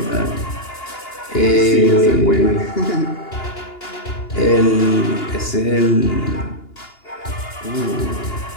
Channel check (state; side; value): late; right; 2.8 ms